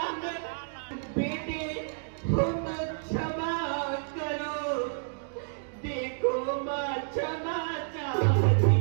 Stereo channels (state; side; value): silent; left; digital silence